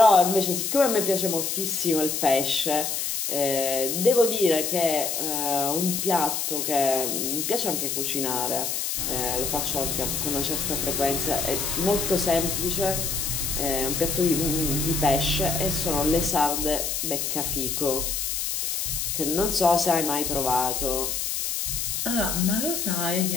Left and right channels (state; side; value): noise; left; hiss, 1 dB below the sound